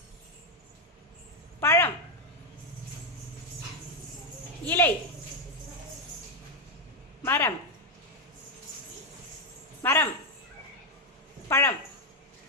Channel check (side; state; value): both; normal; correlation 0.04